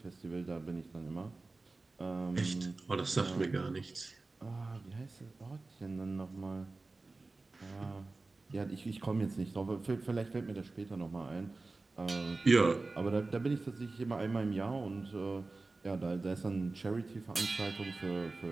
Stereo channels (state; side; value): quieter; left; 3.5 dB